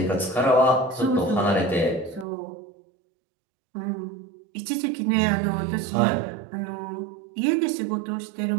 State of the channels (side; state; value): left; drops out; at 2.2 s